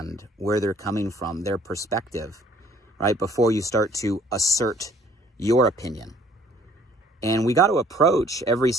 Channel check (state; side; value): normal; both; correlation 0.58